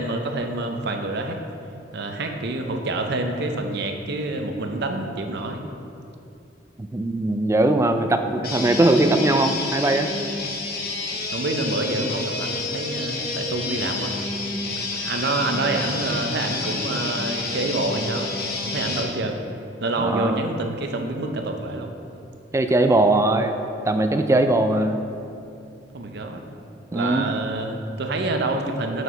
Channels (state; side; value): normal; both; correlation 0.48